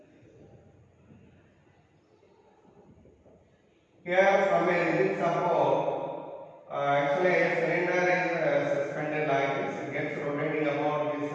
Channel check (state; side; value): identical; both; correlation 1.00